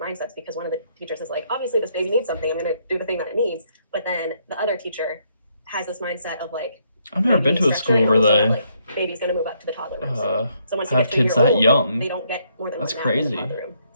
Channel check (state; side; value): inverted; both; correlation -0.72